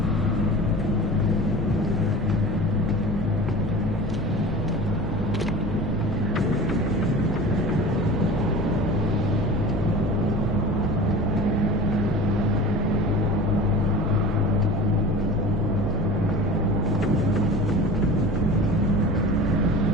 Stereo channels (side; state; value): both; normal; correlation 0.36